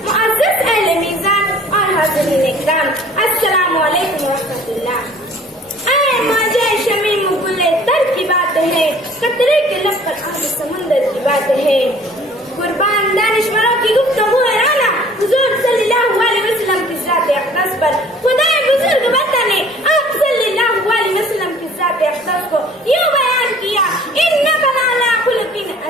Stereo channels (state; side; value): normal; both; correlation 0.52